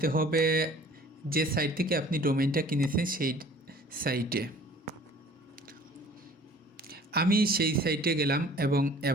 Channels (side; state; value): both; normal; correlation 0.50